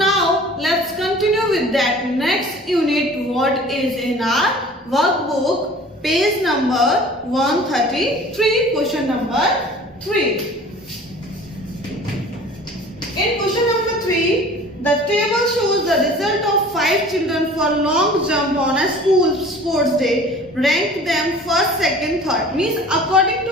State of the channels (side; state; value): both; normal; correlation 0.45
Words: let's continue with that next unit what is in our workbook, page number 133, question number 3. In question number 3, the table shows the result of 5 children for long jump on a school sports day. Rank them first, second, third. Means according